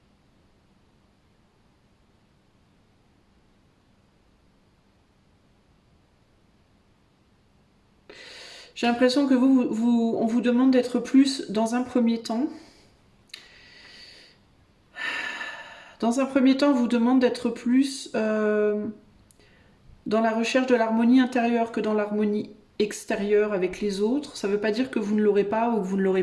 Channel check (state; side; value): identical; both; correlation 1.00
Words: J'ai l'impression que on vous demande d'être plus dans un premier temps. Dans un premier temps, on vous demande d'être plus dans la recherche de l'harmonie intérieure que dans l'harmonie extérieure avec les autres. Ça ne veut pas dire que vous ne l'aurez pas ou que vous ne l'aurez